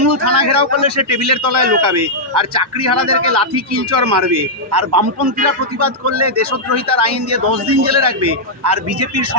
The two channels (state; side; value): normal; both; correlation -0.06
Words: থানা ঘেরাও করলে সে টেবিলের তলায় লোকাবে, আর চাকরিহারাদেরকে লাঠি কিলচর মারবে, আর বামপন্থীরা প্রতিবাদ করলে দেশদ্রোহিতার আইন দিয়ে 10 দিন জেলে রাখবে, আর বিজেপির